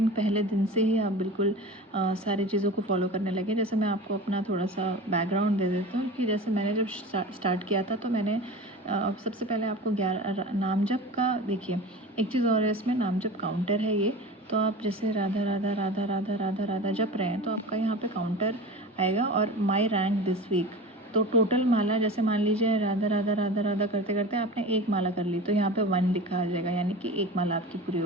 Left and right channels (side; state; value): both; normal; correlation 0.32